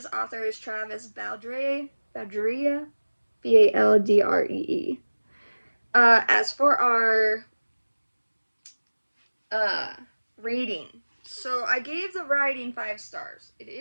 Author is Travis Baldrea, Baldree. As for our uh, rating, so I gave the writing 5 stars. It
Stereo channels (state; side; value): inverted; both; correlation -1.00